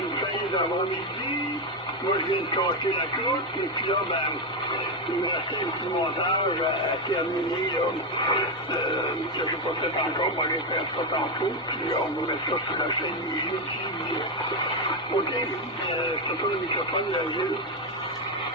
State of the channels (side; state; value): both; normal; correlation 0.07